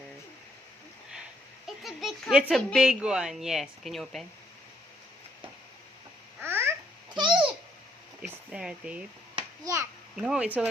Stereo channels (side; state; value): both; normal; correlation 0.71